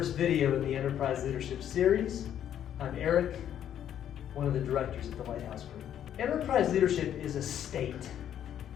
video in the Enterprise Leadership series. I'm Eric, one of the directors at the Lighthouse Group. Enterprise leadership is a state.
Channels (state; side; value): quieter; right; 10.2 dB